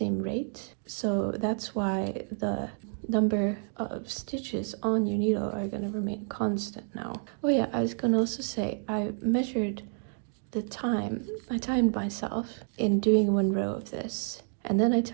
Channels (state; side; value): silent; left; 58 dB below the other